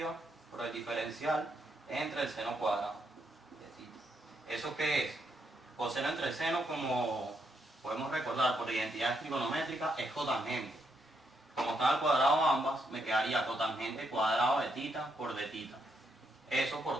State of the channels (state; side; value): normal; both; correlation 0.78